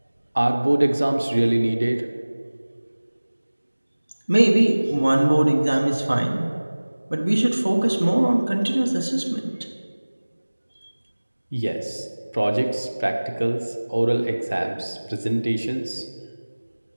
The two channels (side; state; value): both; inverted; correlation -1.00